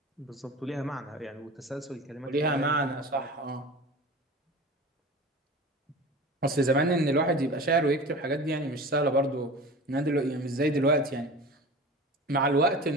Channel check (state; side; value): normal; both; correlation 0.35